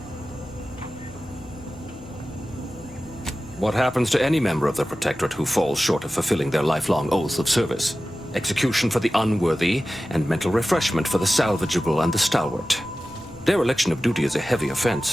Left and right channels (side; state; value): both; normal; correlation 0.95